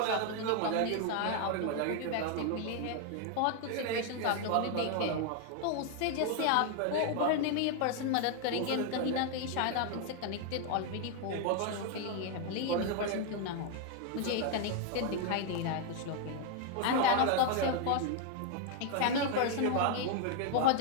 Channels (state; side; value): different; both; correlation 0.00